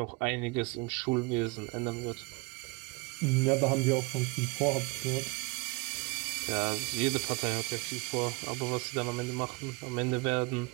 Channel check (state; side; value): quieter; left; 27.9 dB